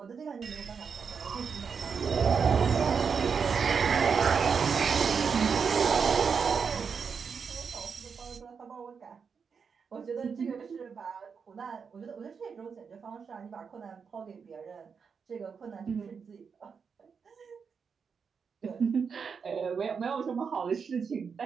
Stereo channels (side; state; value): left; quieter; 6.0 dB